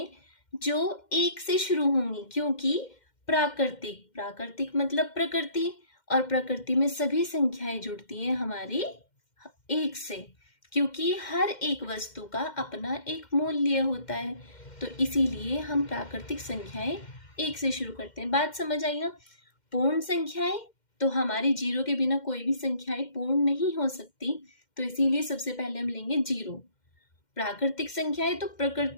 जो एक से शुरू होंगी, क्योंकि प्राकृतिक मतलब प्रकृति, और प्रकृति में सभी संख्याएं जुड़ती हैं हमारी एक से, क्योंकि हर एक वस्तु का अपना एक मूल्य होता है। तो इसीलिए हम प्राकृतिक संख्याएं एक से शुरू करते हैं। बात समझ आई ना। पूर्ण संख्याएं तो हमारी जीरो के बिना कोई भी संख्याएं पूर्ण नहीं हो सकती, तो इसीलिए सबसे पहले हम लेंगे जीरो। प्राकृतिक संख्याएं तो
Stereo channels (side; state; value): right; late; 2.1 ms